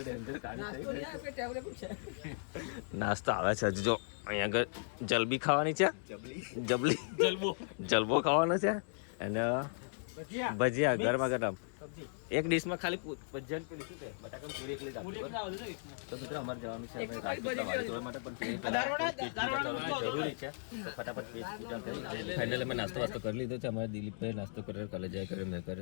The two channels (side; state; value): right; silent; digital silence